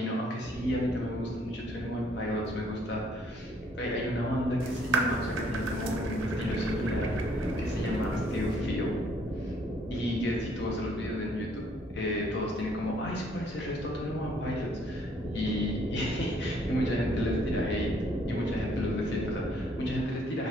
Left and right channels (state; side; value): normal; both; correlation 0.64